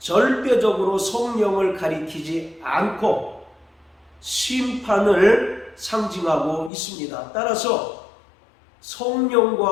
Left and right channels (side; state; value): right; drops out; at 6.7 s